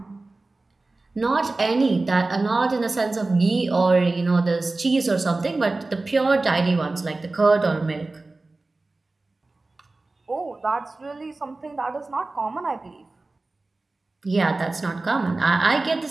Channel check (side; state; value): left; quieter; 3.2 dB